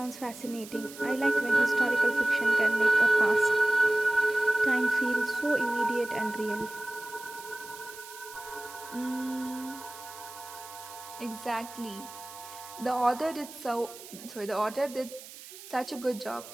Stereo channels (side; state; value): right; noise; hiss, 16 dB below the sound